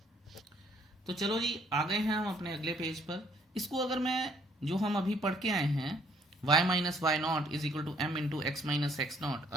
तो चलो जी आ गए हैं हम अपने अगले पेज पर। इसको अगर मैं जो हम अभी पढ़ के आए हैं y minus y naught is equal to m into x minus x naught,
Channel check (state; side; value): normal; both; correlation 0.63